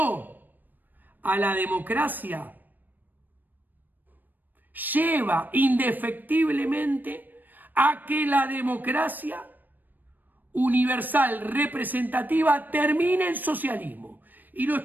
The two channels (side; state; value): left; late; 0.089 ms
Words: a la democracia lleva indefectiblemente a que la democracia universal representativa termine en socialismo. Y lo